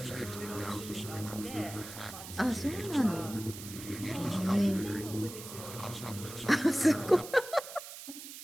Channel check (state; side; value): noise; right; hiss, 12 dB below the sound